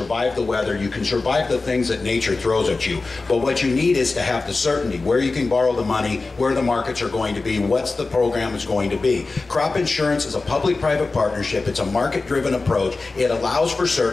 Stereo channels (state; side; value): quieter; right; 3.7 dB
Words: the weather, you can survive the things that nature throws at you. But what you need is to have the certainty, where you can borrow the money, where the markets are going to be, what's the program is going to be. Crop insurance is a public-private partnership. It's a market-driven approach. It allows for